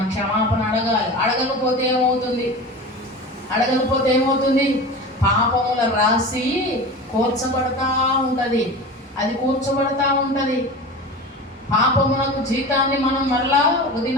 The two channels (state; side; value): normal; both; correlation 0.32